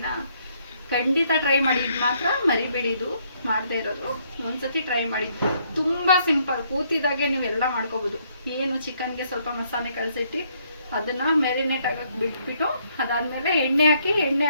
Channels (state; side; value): inverted; both; correlation -0.70